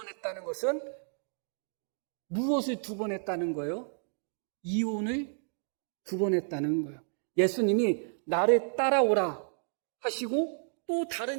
것은 무엇을 2번 했다는 거예요? 이혼을 2번 했다는 거예요. 예수님이 나를 따라오라 하시고 또 다른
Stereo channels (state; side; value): silent; left; 57 dB below the other